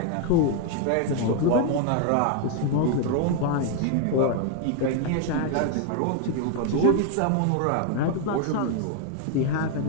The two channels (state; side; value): different; both; correlation 0.00